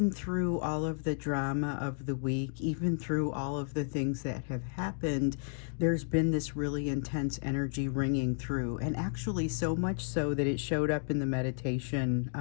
through all of the drama of the week, even through all of the things that have happened, there's been this really intense energy ringing through, and actually so much so that it showed up in the meditation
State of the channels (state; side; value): silent; right; 56 dB below the other